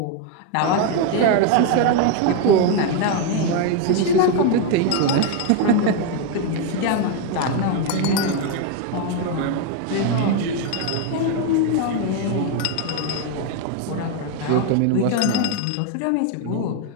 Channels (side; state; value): both; different; correlation 0.01